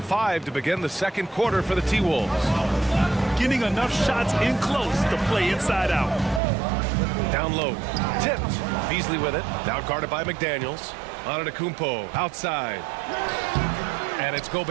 to begin the second quarter for the T-Wolves. Getting enough shots in close to play inside out. Down low. Tipped. Beasley with it. Now guarded by McDaniels. Antetokounmpo outside. And it's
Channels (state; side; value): drops out; left; at 6.4 s